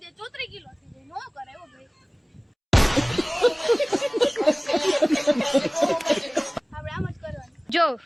જાય 34 કિલો થઈ જાય. નો કરે એવો ભાઈ. આપણે આમ જ કરવાનું. જો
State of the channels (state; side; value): identical; both; correlation 1.00